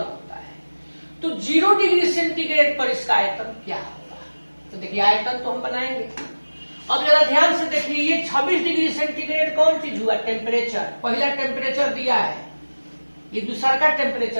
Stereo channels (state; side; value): inverted; both; correlation -1.00